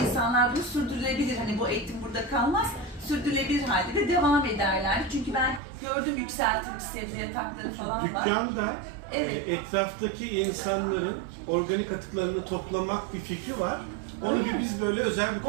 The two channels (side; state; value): left; drops out; at 5.6 s